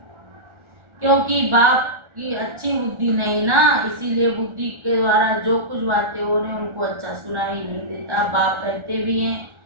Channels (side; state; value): left; late; 1.4 ms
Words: क्योंकि बाप की अच्छी बुद्धि नहीं ना, इसीलिए बुद्धि के द्वारा जो कुछ बातें हो रही उनको अच्छा सुनाई नहीं देता। बाप कहते भी हैं